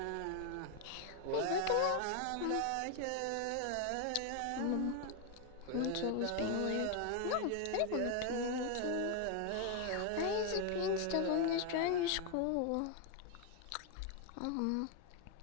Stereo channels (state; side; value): different; both; correlation 0.01